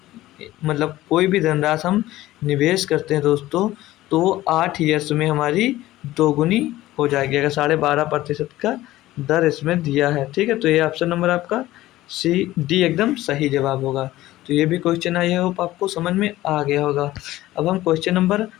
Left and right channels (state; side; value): quieter; right; 16.1 dB